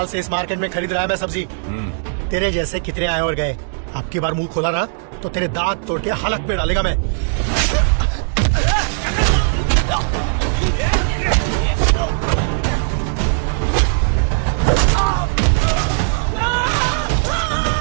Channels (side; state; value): left; silent; digital silence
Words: से इस मार्केट में खरीद रहा है मैं सब्जी। तेरे जैसे कितने आए और गए। अब की बार मुंह खोला ना तो तेरे दांत तोड़ के हलक पे डालेगा मैं।